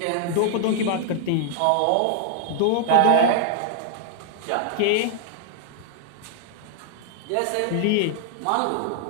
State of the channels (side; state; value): both; different; correlation -0.01